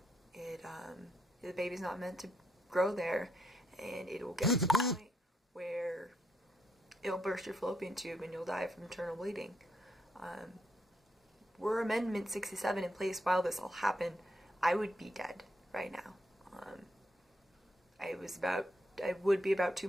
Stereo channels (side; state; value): both; normal; correlation 0.78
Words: The baby's not meant to grow there, and it will get to the point where it'll burst your fallopian tube and you'll die from internal bleeding. Were Amendment 67 in place while this all happened, I would be dead right now. I would be about 2